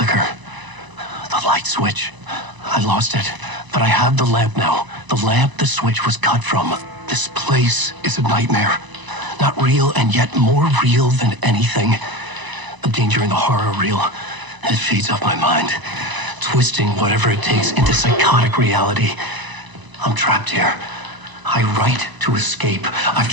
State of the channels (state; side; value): late; left; 1.0 ms